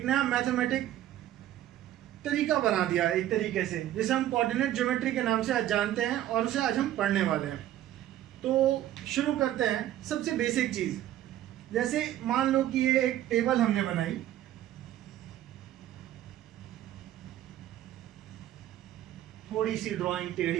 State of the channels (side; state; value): left; quieter; 12.9 dB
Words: नया मैथमेटिक तरीका बना दिया एक तरीके से, जिसे हम कोऑर्डिनेट ज्योमेट्री के नाम से आज जानते हैं और उसे आज हम पढ़ने वाले हैं। तो शुरू करते हैं सबसे बेसिक चीज़। जैसे मान लो कि ये एक टेबल हमने बनाई, थोड़ी सी ड्राइंग